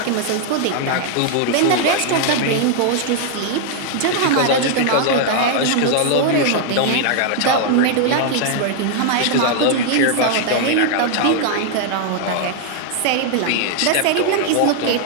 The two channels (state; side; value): different; both; correlation 0.00